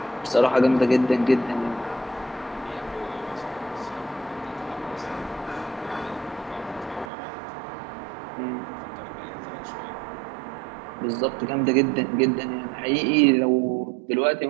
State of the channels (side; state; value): left; drops out; at 7.1 s